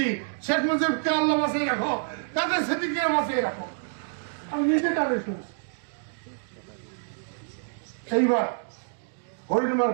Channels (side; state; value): left; silent; digital silence